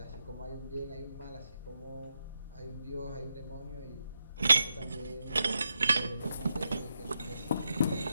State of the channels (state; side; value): inverted; both; correlation -0.85